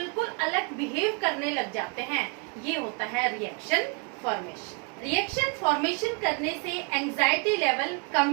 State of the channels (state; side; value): quieter; left; 33.6 dB